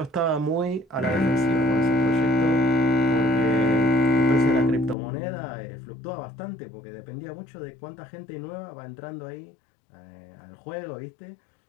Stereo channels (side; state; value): right; drops out; at 5.0 s